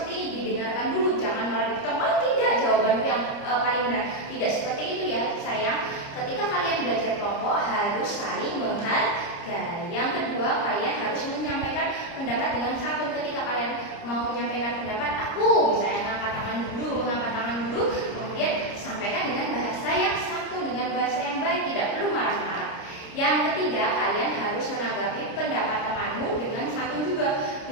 ini, didengarkan dulu, jangan malah dipotong. Oh tidak, jawaban yang paling benar. Tidak seperti itu ya sayang. Ketika kalian belajar kelompok harus saling menghargai. Yang kedua, kalian harus menyampaikan pendapat dengan santun. Ketika kalian mau menyampaikan pendapat, aku misalnya ngangkat tangan dulu, kemudian sampaikan dengan bahasa yang santun, dengan bahasa yang baik, tidak perlu marah-marah. Yang ketiga, kalian harus menanggapi pendapat temanmu dengan santun juga.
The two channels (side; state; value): right; late; 30 ms